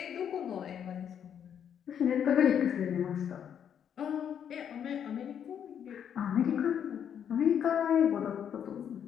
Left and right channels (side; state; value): right; quieter; 8.6 dB